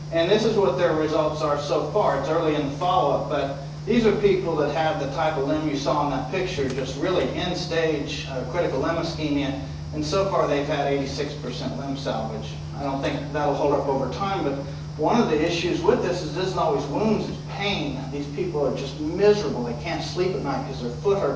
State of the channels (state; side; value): identical; both; correlation 1.00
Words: And this is what their results are so far. It's early in the follow-up, but these are people that have the type of limb you saw in that picture, just really end-stage critical limb ischemia, and so far they've had 86% limb salvage. I don't think that'll hold up over time, but one of the issues with this isn't always wounds, it's pain. These people are just miserable. They can't sleep at night because their foot